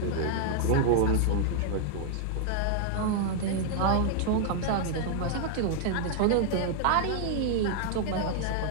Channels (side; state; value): both; different; correlation -0.01